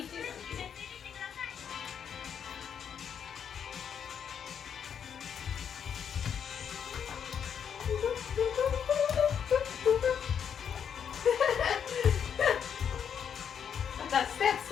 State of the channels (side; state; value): right; quieter; 7.9 dB